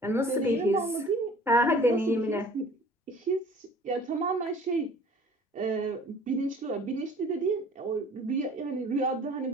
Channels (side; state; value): both; normal; correlation 0.49